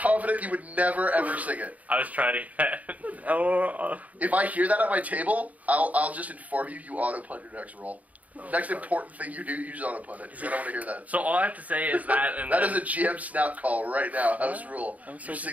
you would never, ever sing it. I was trying to get. If I hear that at my table, I'll just inform you auto-punt your next roll. Next important thing you do, use auto-punt it. I don't want to hear that. So all I have to say is that, and That then, is a GM snap call right now. House rule. I'm so You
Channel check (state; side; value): late; left; 0.072 ms